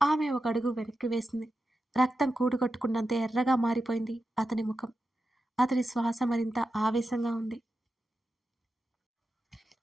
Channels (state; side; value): normal; both; correlation 0.90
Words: ఆమె ఒక అడుగు వెనక్కి వేసింది. రక్తం కూడుగట్టుకున్నంత ఎర్రగా మారిపోయింది అతని ముఖం. అతని శ్వాస మరింత ఆవేశంగా ఉంది.